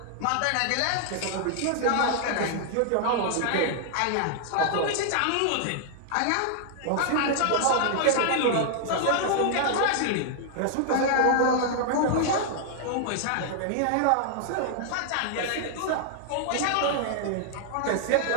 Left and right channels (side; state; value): both; different; correlation -0.01